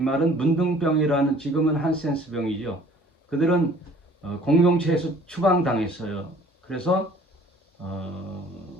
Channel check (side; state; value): both; normal; correlation 0.53